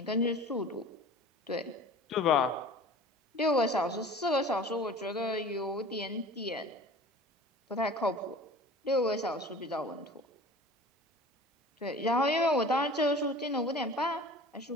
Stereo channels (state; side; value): normal; both; correlation 0.42